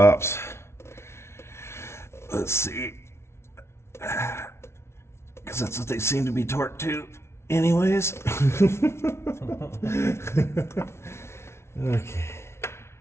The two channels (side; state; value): right; late; 0.13 ms